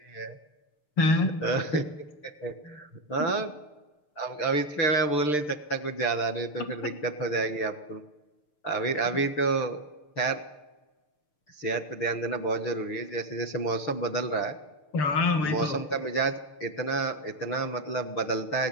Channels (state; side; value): late; right; 6.6 ms